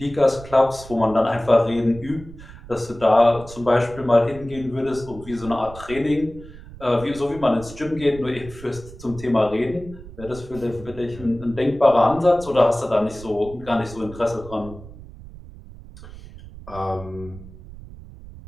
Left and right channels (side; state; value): right; noise; rumble, 16 dB below the sound